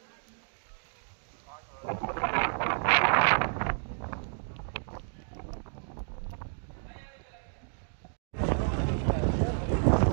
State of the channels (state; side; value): silent; left; 57 dB below the other